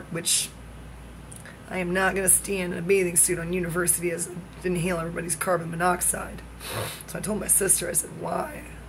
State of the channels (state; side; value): identical; both; correlation 1.00